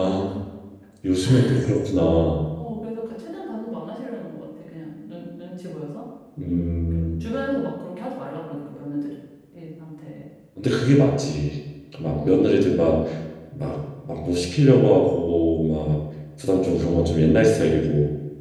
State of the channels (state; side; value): identical; both; correlation 1.00